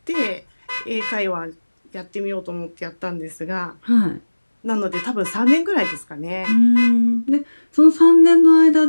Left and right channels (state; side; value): inverted; both; correlation -1.00